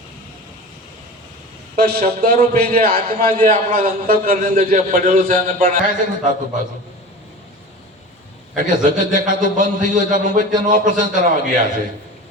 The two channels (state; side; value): normal; both; correlation 0.34